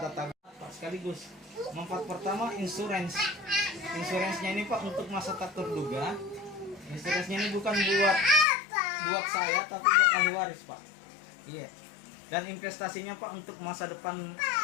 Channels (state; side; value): drops out; right; at 8.5 s